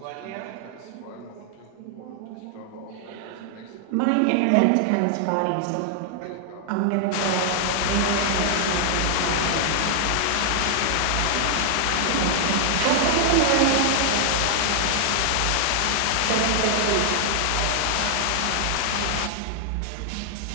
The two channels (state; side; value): different; both; correlation -0.01